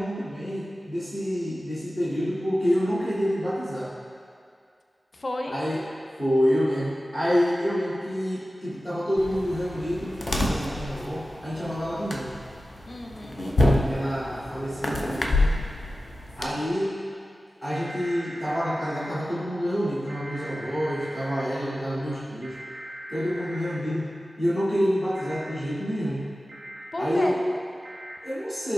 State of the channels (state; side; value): normal; both; correlation 0.95